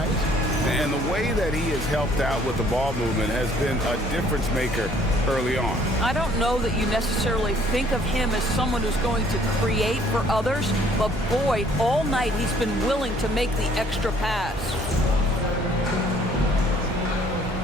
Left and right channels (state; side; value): normal; both; correlation 0.60